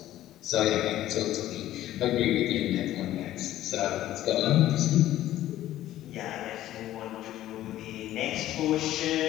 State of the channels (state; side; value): quieter; right; 13.7 dB